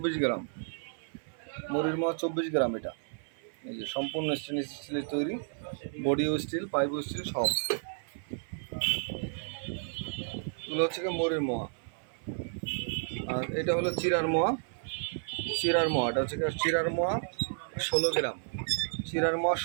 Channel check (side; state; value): left; silent; 57 dB below the other